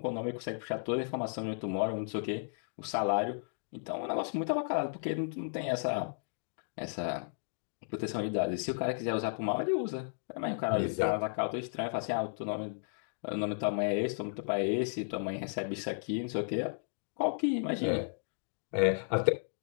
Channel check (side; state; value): right; silent; digital silence